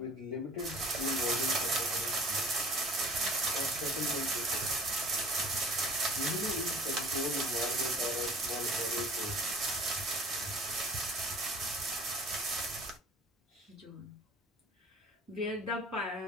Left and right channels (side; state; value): both; normal; correlation 0.46